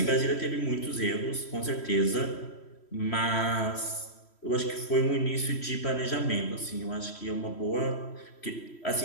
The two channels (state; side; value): late; right; 3.1 ms